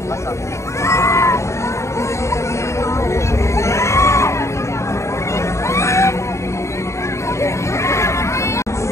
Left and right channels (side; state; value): right; late; 0.14 ms